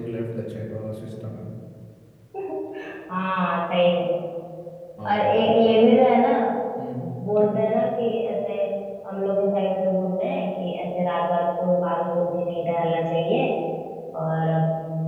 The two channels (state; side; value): identical; both; correlation 1.00